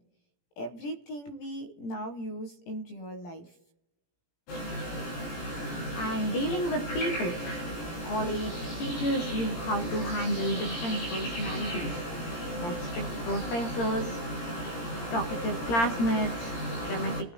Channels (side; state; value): right; late; 17 ms